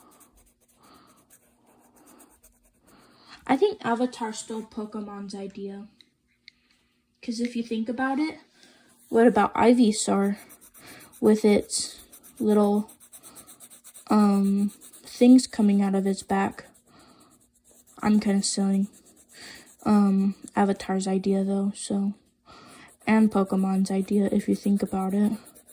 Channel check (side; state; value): both; identical; correlation 1.00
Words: I think Avatar stole Pokemon's idea. Because if you think about it, what about Ivysaur with its little things coming out of its back? I'm kind of stealing Avatar's idea though, so, and Pokemon's idea if you think about it. And